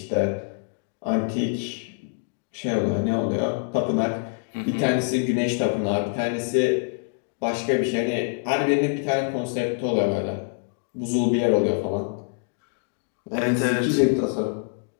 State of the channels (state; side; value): silent; right; 62 dB below the other